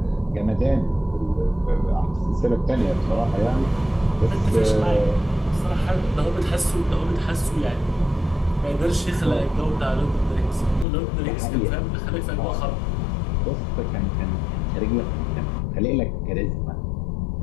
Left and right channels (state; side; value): drops out; right; at 10.9 s